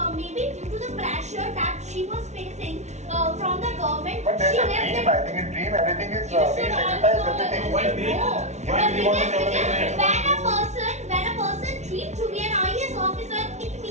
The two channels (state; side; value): late; left; 0.33 ms